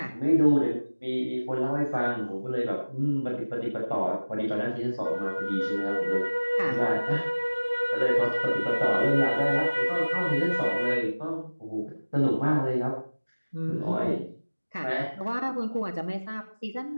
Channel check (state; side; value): inverted; both; correlation -1.00